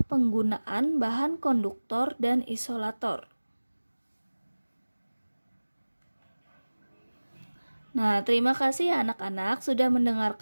penggunaan bahan konduktor dan isolator. Nah, terima kasih ya anak-anak sudah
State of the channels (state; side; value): inverted; both; correlation -1.00